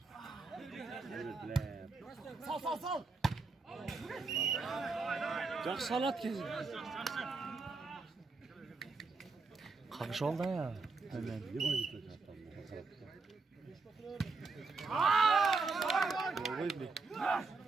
Sal. Çok salat kesin. Kakış oldu ya. Hemen.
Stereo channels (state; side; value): quieter; left; 4.1 dB